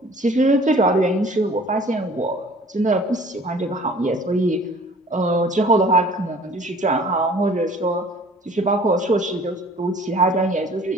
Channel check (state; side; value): normal; both; correlation 0.50